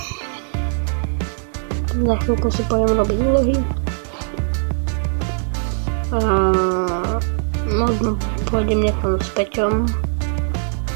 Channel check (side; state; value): left; silent; digital silence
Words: Za chvíľku si pôjdem robiť úlohy. Možno pôjdem niekam s Peťom